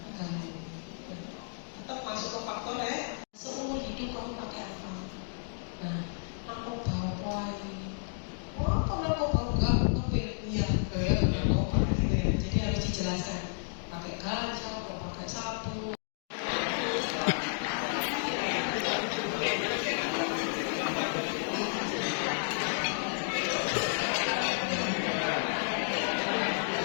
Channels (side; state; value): right; silent; digital silence